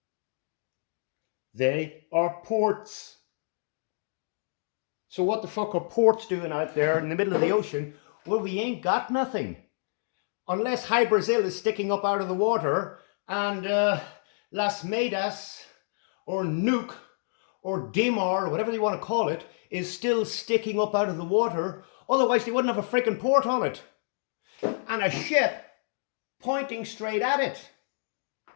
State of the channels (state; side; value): silent; right; digital silence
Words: They are ports. So what the fuck are ports doing out there in the middle of the ocean? Well, we ain't got nothing. Unless High Brazil is sticking up out of the water and Las Medas or Nuuk or Dimar, or whatever you want to call it, is still sticking up out of the water. Otherwise they wouldn't have a freaking port on it. And a ship pointing straight at it.